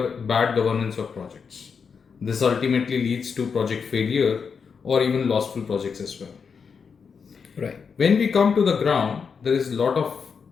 bad governance of projects. This ultimately leads to project failure or even lostful projects as well. Right. When we come to the ground, there is a lot of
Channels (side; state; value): right; quieter; 6.0 dB